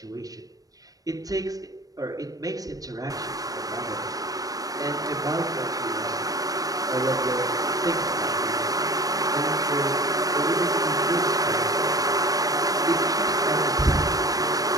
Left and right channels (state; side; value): late; left; 0.18 ms